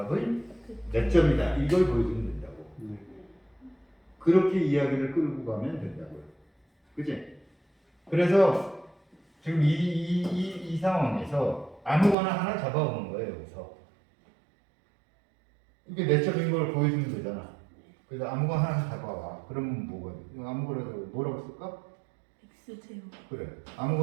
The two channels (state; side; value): drops out; left; at 12.2 s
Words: 몇 점이다 이걸 보여주면 된다고. 네. 그렇게 이야기를 끌고 가면 된다고요. 그치? 그래서 지금 이 상황에서 아무거나 하나 잡아오는 거예요. 여기서 이게 내적인 걸 보여주면 되잖아. 그래서 아무거나 하나 잡아와. 그러면 뭐거든? 아무거나 뭐라고 쓸까? X0 그래.